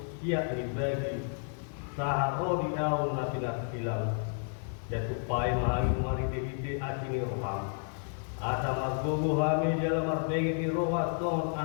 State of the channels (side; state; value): right; silent; 57 dB below the other